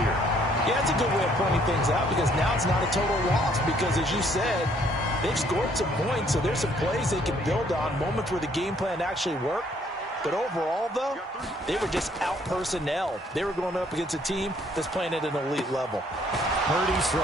Yeah, it's a good way of pointing things out because now it's not a total loss because, as you said, they've scored some points, so there's some plays they can build on, moments where the game plan actually worked. But overall, though, they were just out-personnel. They were going up against a team that's playing at an elite level. Purdy's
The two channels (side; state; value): both; normal; correlation 0.64